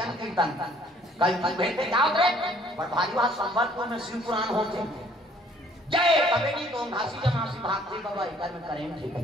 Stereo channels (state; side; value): normal; both; correlation 0.59